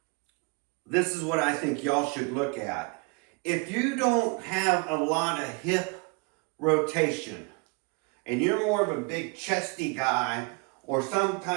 this is what I think y'all should look at. If you don't have a lot of hip rotation, and you're more of a big chesty guy, or some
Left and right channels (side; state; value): left; quieter; 30.1 dB